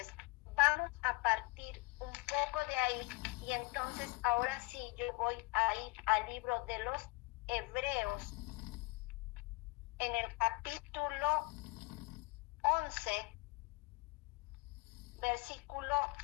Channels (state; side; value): quieter; right; 24.8 dB